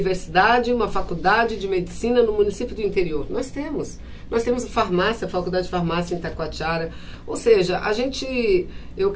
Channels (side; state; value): both; identical; correlation 1.00